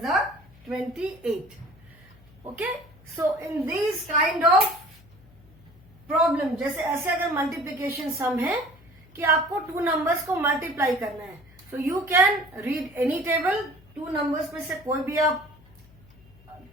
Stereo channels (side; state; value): left; noise; hum, 25 dB below the sound